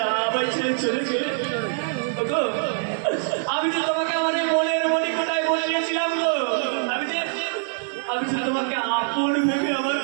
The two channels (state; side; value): silent; left; 63 dB below the other